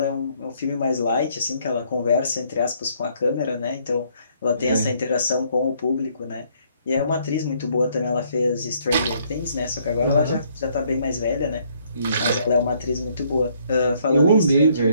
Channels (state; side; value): inverted; both; correlation -0.67